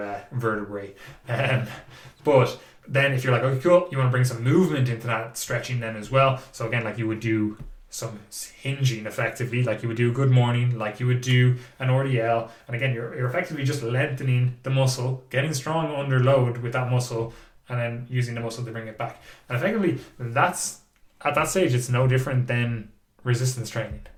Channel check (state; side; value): identical; both; correlation 1.00